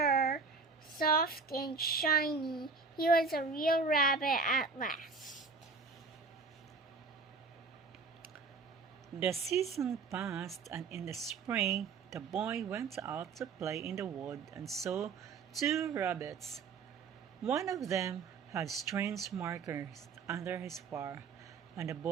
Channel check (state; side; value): quieter; left; 4.7 dB